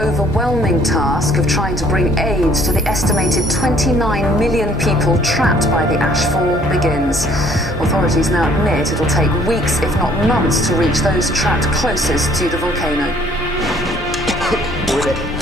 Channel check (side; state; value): both; normal; correlation 0.59